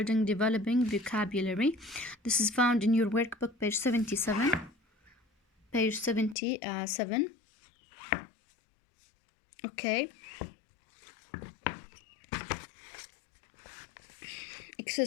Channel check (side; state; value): right; drops out; at 6.4 s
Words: developing vocabulary. This is found in your workbook, page 77. Page 77. Okay.